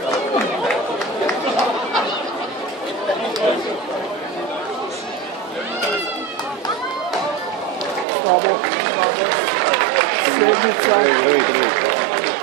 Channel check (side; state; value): left; drops out; at 8.1 s